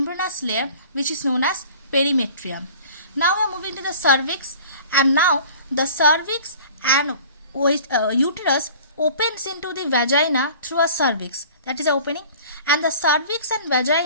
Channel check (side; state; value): both; inverted; correlation -0.45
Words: layer which is known as perimetrium. Now we are moving to the cervix, and now the cervix and uterus opens into the vagina through a cervix, that is the opening, and the cervix and